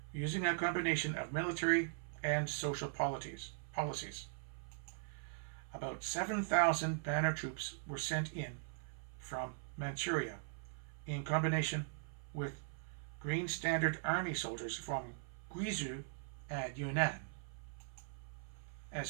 using a combination of military and social policies. About 7,000 banner troops were sent in from Manchuria in combination with Green Standard Army soldiers from Guizhou and Yunnan.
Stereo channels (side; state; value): left; silent; 51 dB below the other